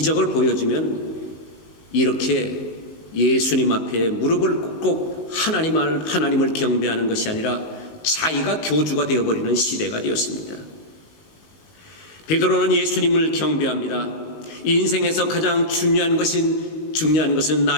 보여주면 이렇게 예수님 앞에 무릎을 꿇고 하나님을 경배하는 것이 아니라 자기가 교주가 되어버리는 시대가 되었습니다. 베드로는 예수님을 경배합니다. 인생에서 가장 중요한 것은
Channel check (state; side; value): late; right; 19 ms